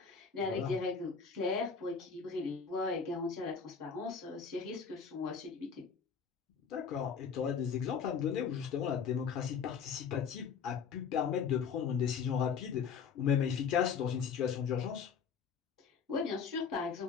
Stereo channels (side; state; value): right; quieter; 6.4 dB